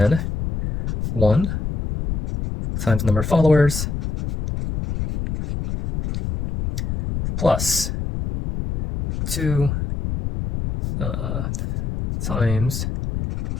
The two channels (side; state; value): left; noise; rumble, 3 dB below the sound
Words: 1 times number of followers plus 2 times